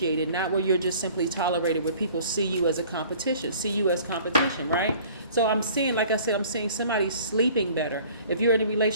not where you're just simply tolerated, where people see you as competition, right? So I'm seeing, like I said, I'm seeing somebody sleeping better. If you're in a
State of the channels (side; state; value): both; inverted; correlation -0.50